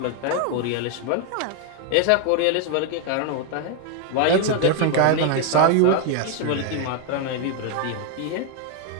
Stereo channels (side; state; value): both; different; correlation 0.01